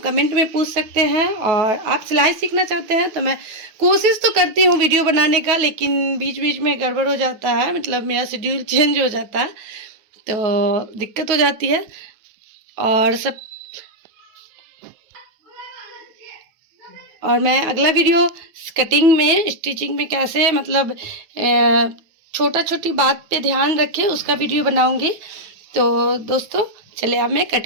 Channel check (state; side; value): late; left; 9.3 ms